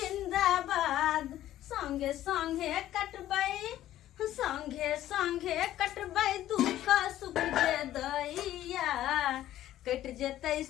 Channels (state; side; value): quieter; right; 13.2 dB